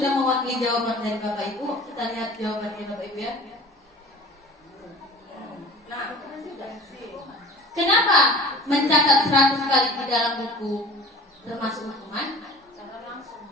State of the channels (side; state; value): both; normal; correlation 0.42